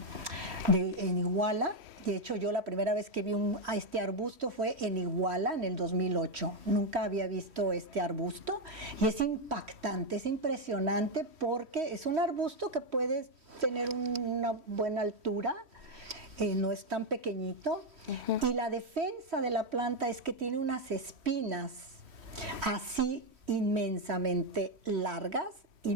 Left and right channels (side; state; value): left; late; 3.1 ms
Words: Iguala. De hecho, yo la primera vez que vi a este arbusto fue en Iguala, en el 2008. Nunca había visto este arbusto y es impactante, es impresionante porque es un arbusto que puede tener una buena altura, no es tan pequeñito. Y la defensa de la planta es que tiene unas espinas así inmensamente largas y